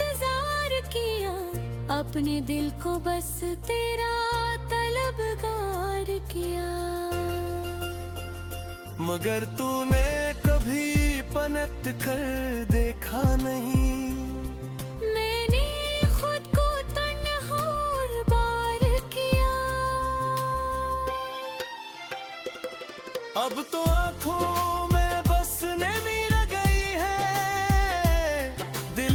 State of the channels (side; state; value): both; identical; correlation 1.00